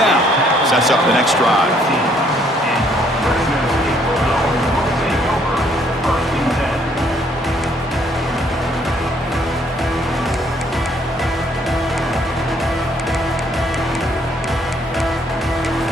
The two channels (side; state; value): both; normal; correlation 0.66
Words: Sets up the next drive.